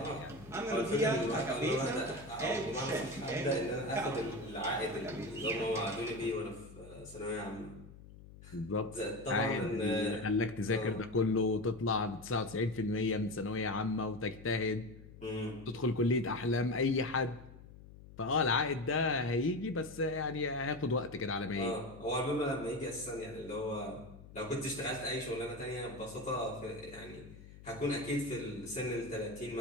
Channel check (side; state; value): left; noise; hum, 18 dB below the sound